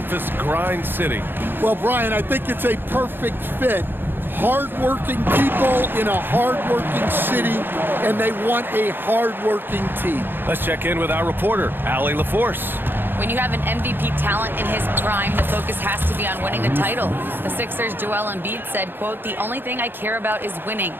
Grind City. Well, Brian, I think it's a perfect fit. Hard-working people in a hard-working city, and they want a hard-working team. Let's check in with our reporter, Allie LaForce. When you have an MVP talent in his prime, the focus has to be on winning the title. The Sixers' Joel Embiid said, quote, "The only thing I care about is winning.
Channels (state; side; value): late; left; 0.099 ms